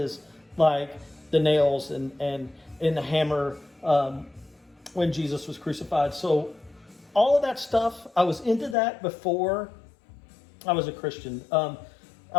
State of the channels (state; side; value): drops out; right; at 8.8 s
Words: like the nails and the hammer when Jesus was crucified. So, all of that stuff, I was into that before I was a Christian. I